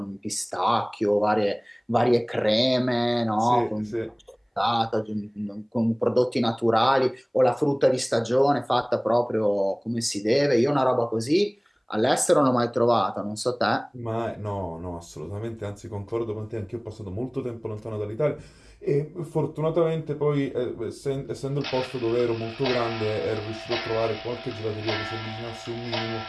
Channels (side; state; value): both; identical; correlation 1.00